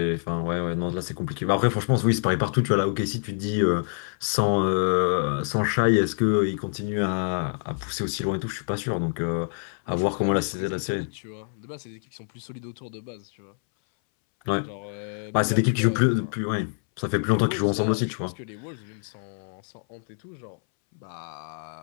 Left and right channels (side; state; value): right; silent; 61 dB below the other